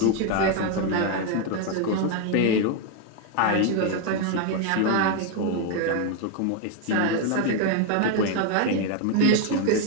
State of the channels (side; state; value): both; different; correlation 0.01